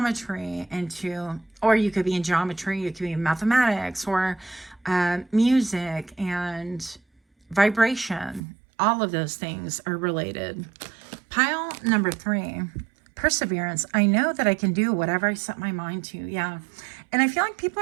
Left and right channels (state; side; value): drops out; left; at 8.4 s